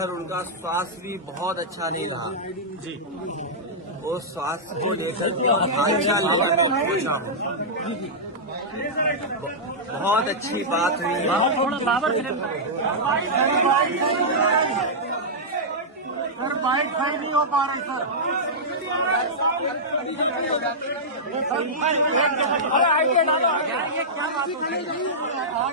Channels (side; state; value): both; normal; correlation -0.11